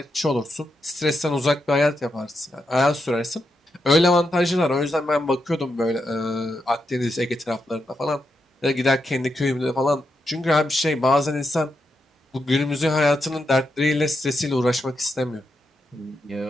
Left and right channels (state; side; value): normal; both; correlation 0.84